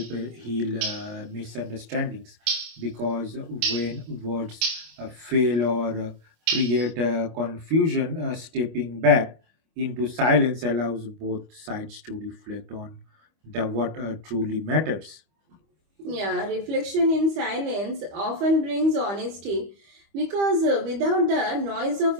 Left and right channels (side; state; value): left; late; 25 ms